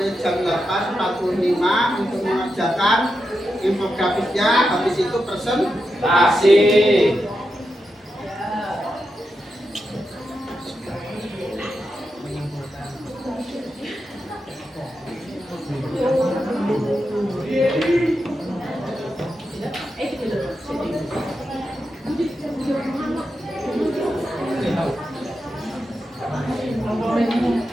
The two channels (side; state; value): both; normal; correlation 0.87